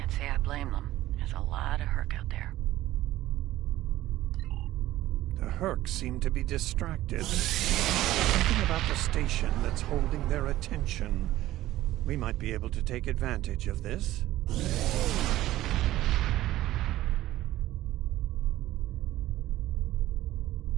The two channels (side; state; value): left; quieter; 15.3 dB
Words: say I blame them. There's a lot of Herc out there. The Herc seem to be distracted. Something about the station that's holding their attention. We might be able to take advantage of this.